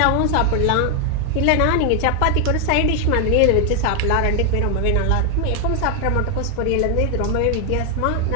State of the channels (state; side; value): different; both; correlation 0.00